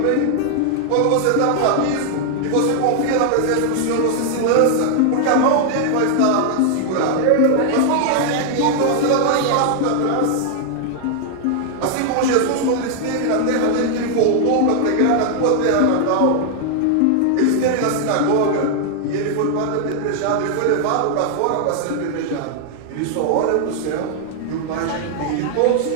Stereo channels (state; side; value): different; both; correlation 0.00